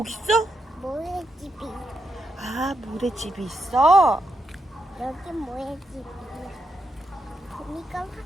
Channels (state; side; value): normal; both; correlation 0.83